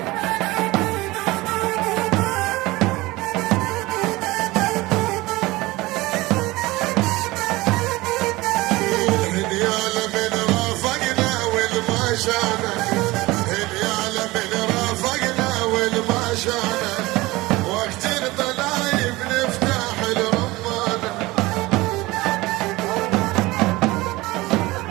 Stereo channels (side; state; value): left; quieter; 20.4 dB